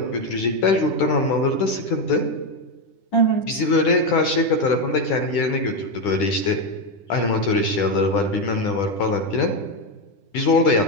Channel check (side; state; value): right; late; 10 ms